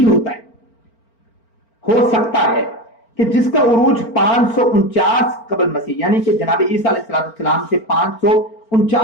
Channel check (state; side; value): late; right; 4.4 ms